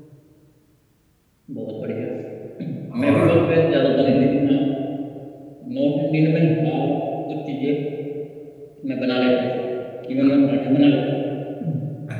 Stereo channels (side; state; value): both; identical; correlation 1.00